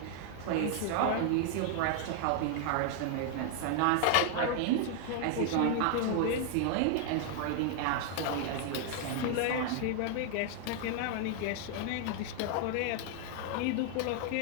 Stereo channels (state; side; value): different; both; correlation 0.00